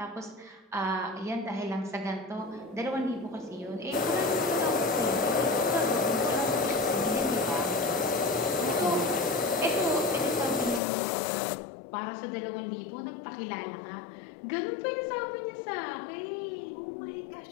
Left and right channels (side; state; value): right; drops out; at 10.8 s